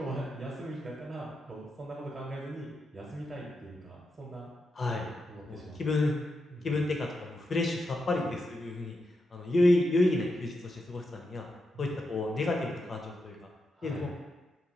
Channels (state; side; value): normal; both; correlation 0.86